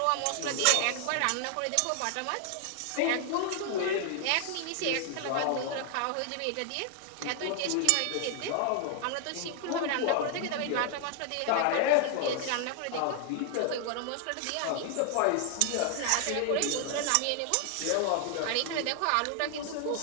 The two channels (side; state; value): both; different; correlation 0.00